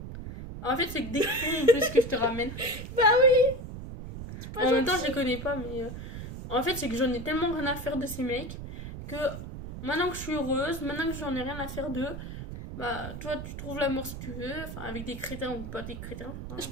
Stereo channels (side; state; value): right; noise; rumble, 9 dB below the sound